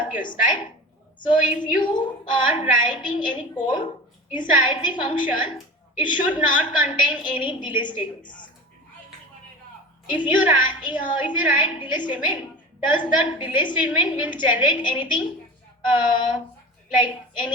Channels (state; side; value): normal; both; correlation 0.34